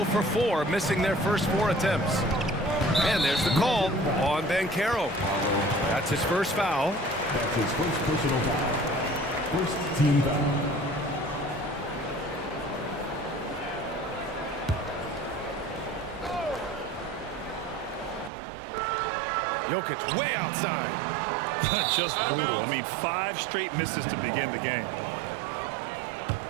for 4, missing their first 4 attempts. And there's the call on Banchero. That's his first foul. That's his first personal foul. First team foul. Jokic way outside. Just brutal. I mean, 5 straight misses to begin the game.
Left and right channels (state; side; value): drops out; left; at 18.3 s